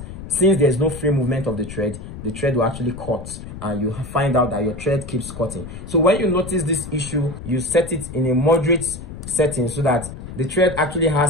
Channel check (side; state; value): left; noise; rumble, 11 dB below the sound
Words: since there's no free movement of the thread will actually cut, and you find out that your thread keeps cutting. So when you notice this issue, you set it in a moderate setting so that the thread actually